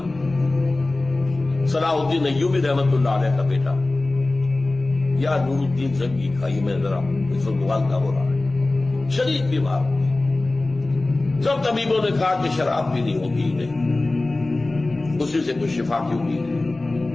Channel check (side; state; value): right; quieter; 3.0 dB